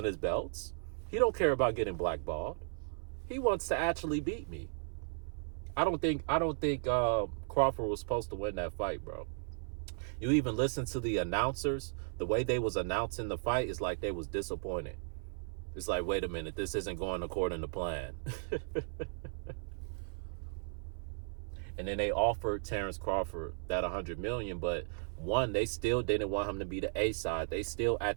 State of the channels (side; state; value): left; silent; 54 dB below the other